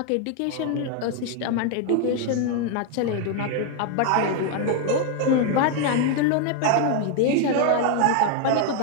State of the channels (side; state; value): both; different; correlation 0.00